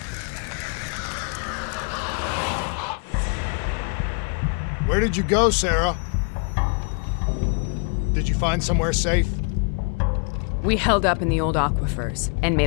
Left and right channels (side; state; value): right; quieter; 38.9 dB